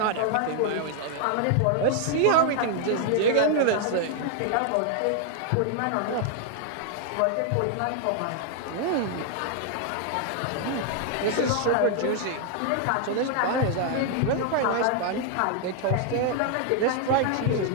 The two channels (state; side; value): different; both; correlation 0.00